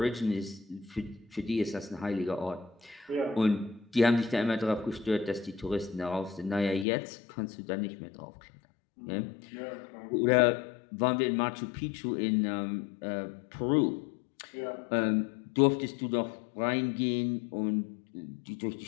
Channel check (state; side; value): drops out; right; at 6.9 s